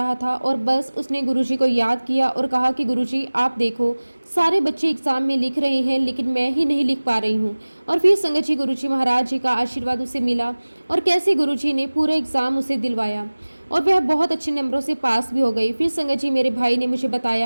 था, और बस उसने गुरुजी को याद किया और कहा कि गुरुजी आप देखो, सारे बच्चे एग्ज़ाम में लिख रहे हैं लेकिन मैं ही नहीं लिख पा रही हूँ। और फिर संगत जी, गुरुजी महाराज जी का आशीर्वाद उसे मिला, और कैसे गुरुजी ने पूरा एग्ज़ाम उसे दिलवाया, और वह बहुत अच्छे नंबरों से पास भी हो गई। फिर संगत जी, मेरे भाई ने मुझे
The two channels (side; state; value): both; inverted; correlation -1.00